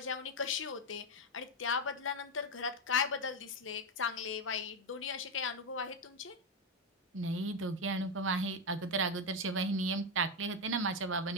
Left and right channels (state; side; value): normal; both; correlation 0.07